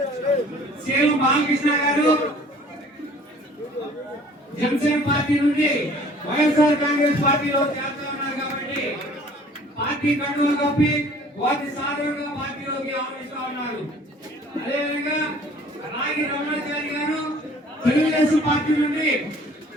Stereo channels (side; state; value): both; normal; correlation 0.52